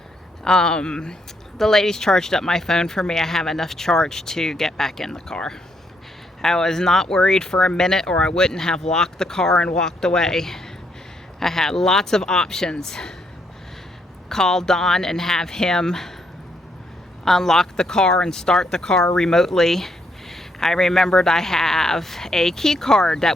The ladies charged up my phone for me. I have enough charge to get back in the car. I was not worried for a minute, or I wouldn't have locked the car and walked away. I had lots of options. Call Don and have him unlock the car and start the car remotely. I remembered I have a key card that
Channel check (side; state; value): both; normal; correlation 0.74